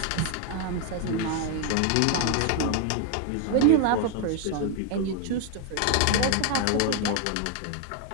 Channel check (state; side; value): different; both; correlation 0.01